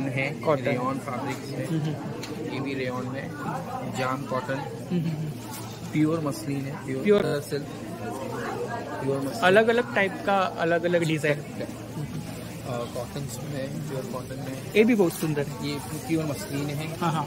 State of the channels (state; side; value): identical; both; correlation 1.00